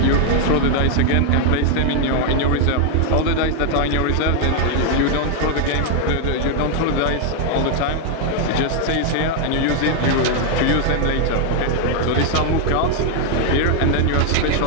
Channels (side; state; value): both; different; correlation 0.00